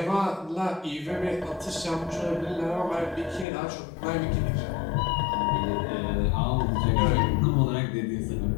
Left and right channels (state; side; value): drops out; right; at 3.5 s